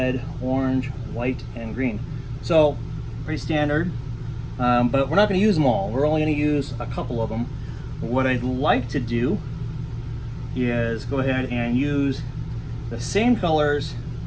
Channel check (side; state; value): both; identical; correlation 1.00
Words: orange, white, and green. So pretty standard, but we're not going to use them all. We're only going to use a couple of them. What I'd like to do is go ahead and use the same colors